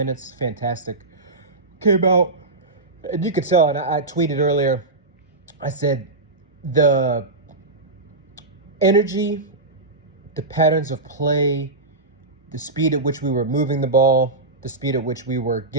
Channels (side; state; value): left; quieter; 3.1 dB